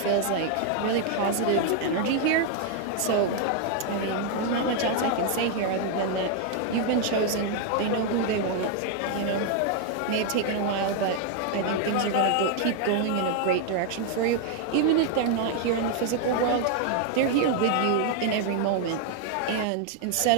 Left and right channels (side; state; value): both; different; correlation 0.00